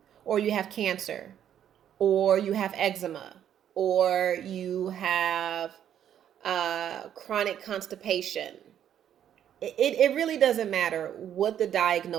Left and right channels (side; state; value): left; quieter; 10.0 dB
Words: Or you have cancer. Or you have eczema. Or you have chronic constipation. It really doesn't matter what the